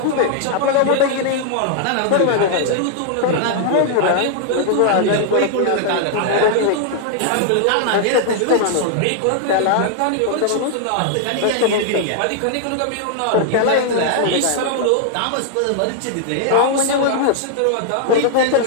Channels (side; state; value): both; different; correlation -0.01